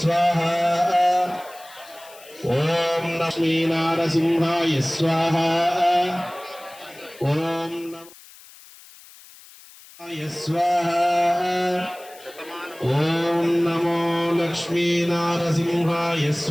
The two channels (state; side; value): noise; left; hiss, 21 dB below the sound